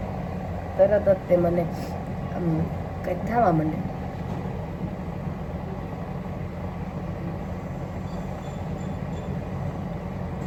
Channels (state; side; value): identical; both; correlation 1.00